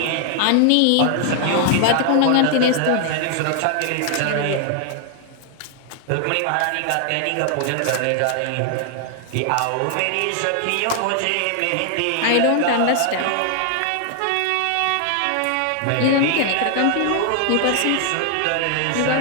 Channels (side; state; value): both; different; correlation 0.00